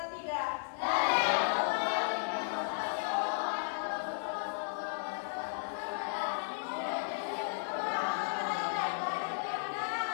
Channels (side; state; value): right; silent; 55 dB below the other